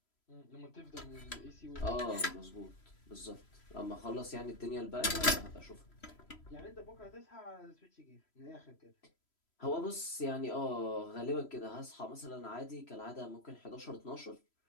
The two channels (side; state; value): right; late; 3.0 ms